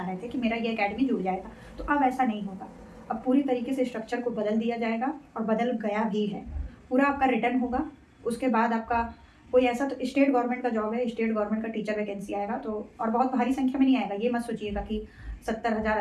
रहे थे कि मेरा ये एकेडमी जुड़ जाएगा। तो अब ऐसा नहीं होगा, अब पूरी तरीके से स्ट्रक्चर को बदल दिया जाएगा, और बदल गया भी है। पूरा आपका रिटर्न होगा, उसके बाद आपका कोई ऐसा, तो स्टेट गवर्नमेंट का जॉब है, स्टेट गवर्नमेंट का टीचर वैकेंसी आएगा, तो और बहुत भारी संख्या में नहीं आएगा, ये मत सोचिएगा कि 70,000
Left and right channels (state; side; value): identical; both; correlation 1.00